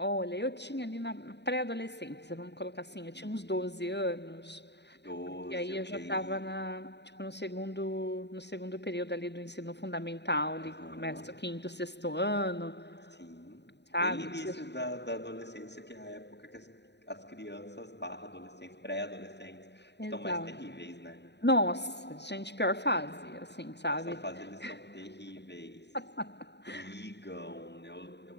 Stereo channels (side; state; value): right; late; 0.50 ms